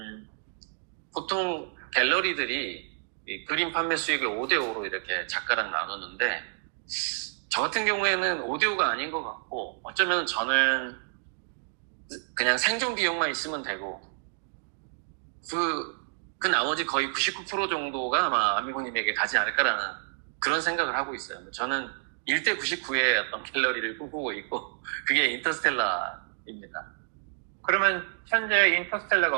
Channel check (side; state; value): left; silent; digital silence